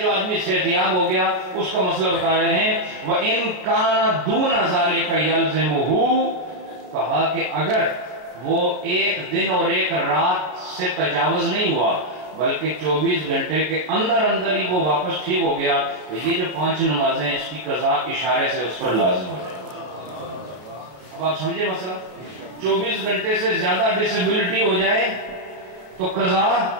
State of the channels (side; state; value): left; late; 32 ms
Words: آدمی صحتیاب ہو گیا اس کا مسئلہ بتا رہے ہیں۔ وَإِن كَانَ دُونَ ذَلِكَ يَلْزِمُهُ، کہا کہ اگر وہ ایک دن اور ایک رات سے تجاوز نہیں ہوا بلکہ 24 گھنٹے کے اندر اندر ہی وہ واپس ٹھیک ہو گیا تو یہ جو 5 نمازیں اس کی قضا اشارے سے اس پر لازم ہو جائے۔ اب آپ سمجھے مسئلہ؟ 24 گھنٹے سے زیادہ ڈسیبلٹی ہو جائے تو قضا